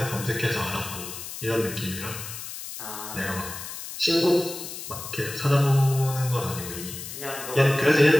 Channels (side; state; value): left; noise; hiss, 9 dB below the sound